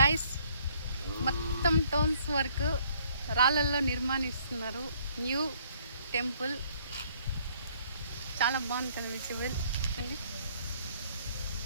గైస్, మొత్తం టోన్స్ వర్క్ రాళ్ళల్లో నిర్మాణిస్తున్నారు. న్యూ టెంపుల్ చాలా బాగుంటుంది. విజిబుల్ అండి.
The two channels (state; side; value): inverted; both; correlation -0.62